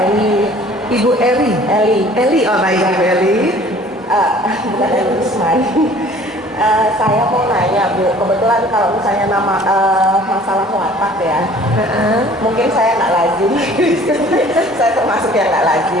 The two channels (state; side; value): normal; both; correlation 0.51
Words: Eli. Ibu Eli. Eli, oh baik Ibu Eli. Bukan Eli Usman. Saya mau nanya Bu, kebetulan kalau misalnya nama masalah watak ya, mungkin saya nggak lazim. Saya termasuk yang nggak